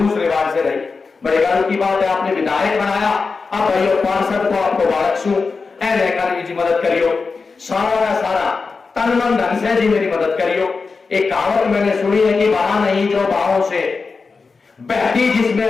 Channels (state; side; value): quieter; right; 4.5 dB